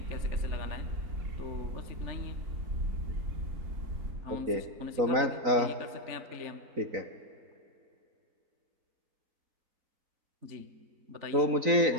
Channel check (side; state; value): left; late; 4.0 ms